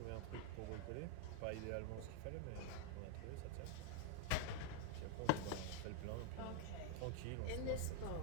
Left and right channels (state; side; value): different; both; correlation 0.00